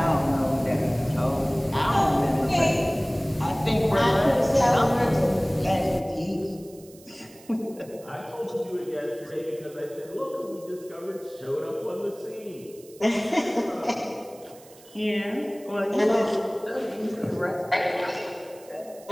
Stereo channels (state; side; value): noise; right; hiss, 23 dB below the sound